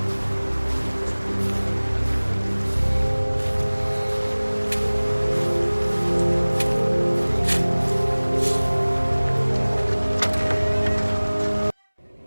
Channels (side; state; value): both; inverted; correlation -1.00